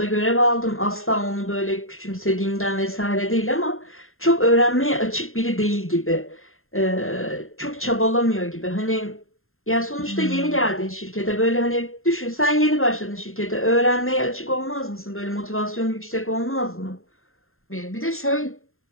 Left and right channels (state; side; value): late; right; 0.61 ms